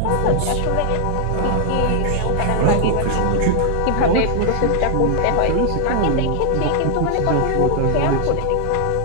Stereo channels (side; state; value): both; different; correlation 0.00